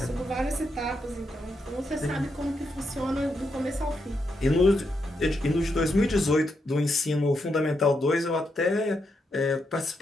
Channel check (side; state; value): both; normal; correlation 0.82